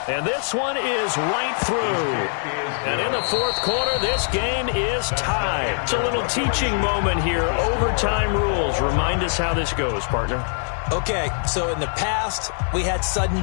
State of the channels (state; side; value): silent; right; 64 dB below the other